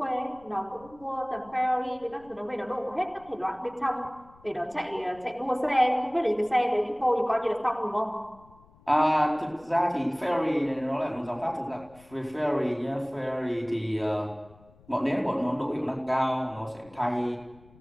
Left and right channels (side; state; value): left; noise; rumble, 26 dB below the sound